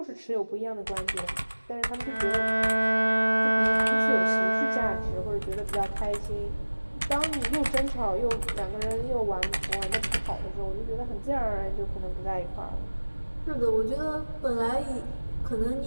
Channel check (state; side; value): inverted; both; correlation -1.00